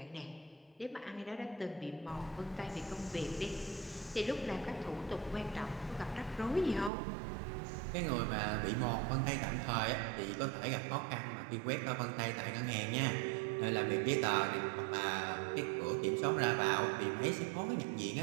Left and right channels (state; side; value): drops out; left; at 6.9 s